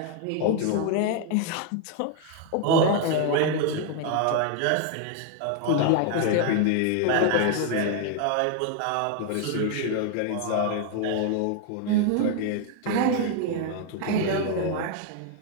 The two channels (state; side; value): different; both; correlation 0.00